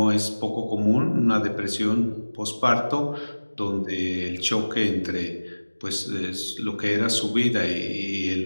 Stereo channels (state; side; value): inverted; both; correlation -1.00